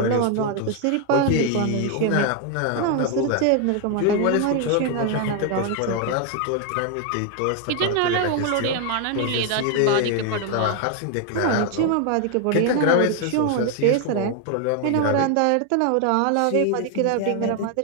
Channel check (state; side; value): different; both; correlation 0.00